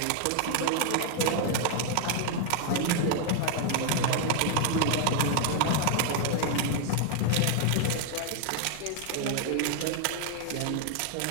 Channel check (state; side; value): different; both; correlation 0.00